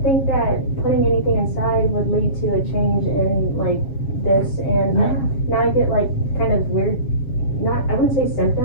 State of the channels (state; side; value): late; right; 7.2 ms